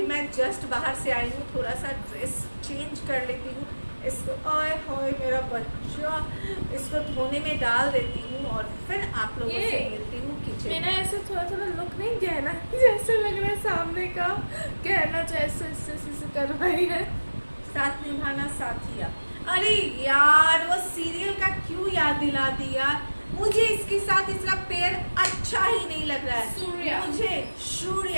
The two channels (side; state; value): both; inverted; correlation -1.00